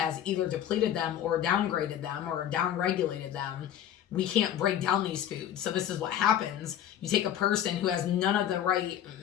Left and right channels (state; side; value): quieter; right; 10.6 dB